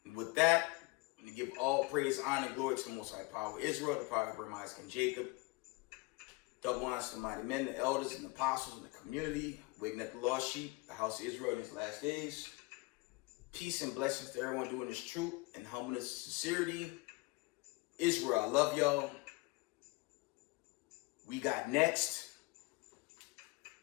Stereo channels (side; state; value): right; quieter; 23.6 dB